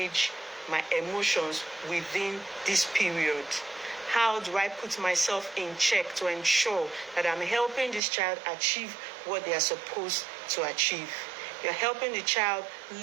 my emotions within this period? How do I put myself in check to ensure that I'm helping this child achieve what they are supposed to achieve? You're helping the child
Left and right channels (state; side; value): drops out; left; at 8.0 s